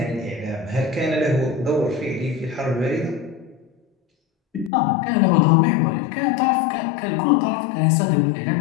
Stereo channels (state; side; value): drops out; right; at 4.7 s